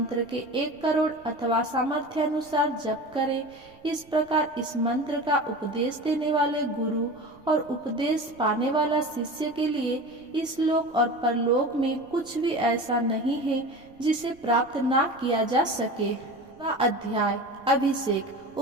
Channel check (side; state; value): right; noise; rumble, 28 dB below the sound